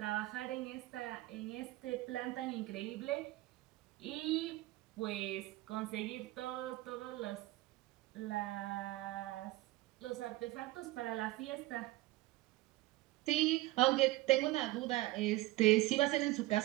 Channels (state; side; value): quieter; left; 18.6 dB